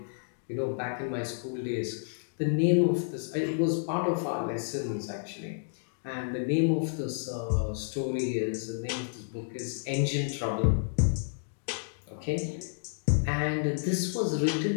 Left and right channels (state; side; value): silent; right; digital silence